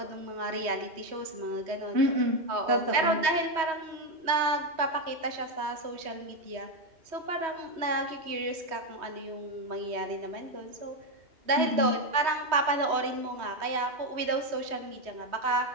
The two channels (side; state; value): left; late; 3.1 ms